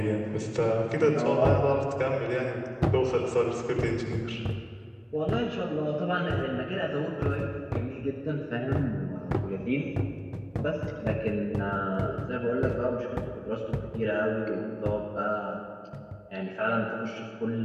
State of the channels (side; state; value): both; identical; correlation 1.00